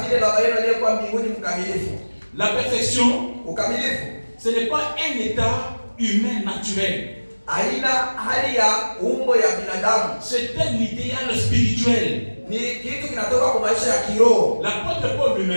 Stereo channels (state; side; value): inverted; both; correlation -1.00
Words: vile baba yenu aliyekuwa mbinguni mkamilifu. La perfection, Ukamilifu ce n'est pas un état humain naturel. haina hali ya umbo ya binadamu, C'est un idéal spirituel. ni kitu kinatoka kwa maisha ya kiroho. L'apôtre Paul